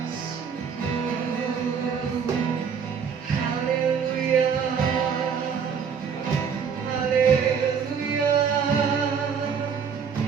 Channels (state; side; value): quieter; left; 6.7 dB